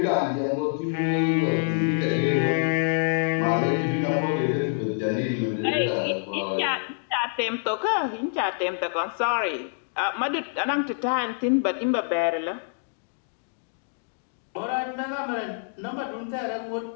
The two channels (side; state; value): right; silent; digital silence